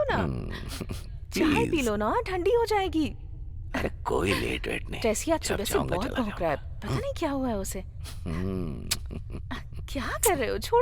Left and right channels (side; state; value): both; identical; correlation 1.00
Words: ना, चाय पी प्लीज। लो ना, ठंडी हो जाएगी। अरे कोई लेट वेट नहीं। टेसी आज जब सुबह से चाहूंगा बहुत चला भौंक रहा है, पता नहीं क्या हुआ है उसे। हम्म, क्या कर रहे हो?